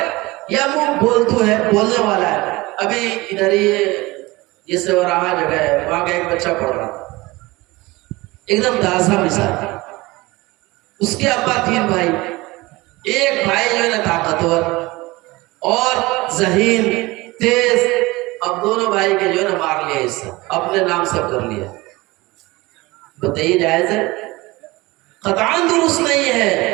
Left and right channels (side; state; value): left; quieter; 21.5 dB